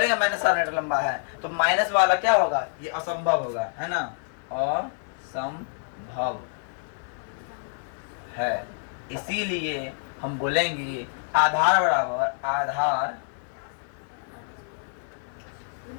-7 मीटर लंबा है तो माइनस वाला क्या होगा, ये असंभव होगा, है ना, असंभव है। इसीलिए हम बोलेंगे आधार बराबर आधार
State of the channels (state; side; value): silent; right; digital silence